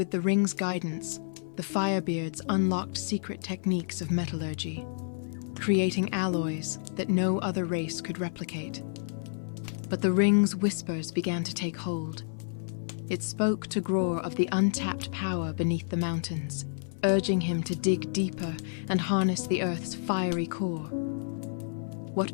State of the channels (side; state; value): right; silent; 55 dB below the other